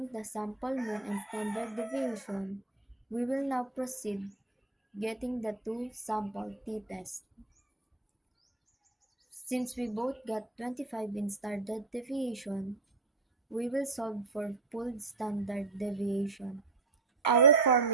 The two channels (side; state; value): left; quieter; 4.0 dB